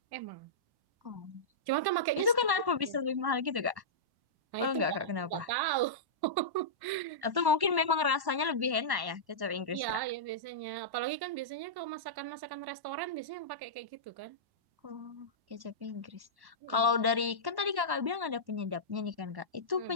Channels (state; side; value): late; left; 1.1 ms